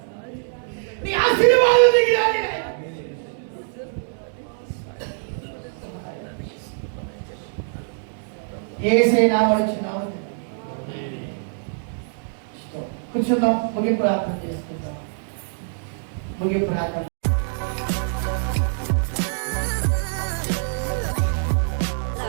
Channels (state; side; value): silent; left; digital silence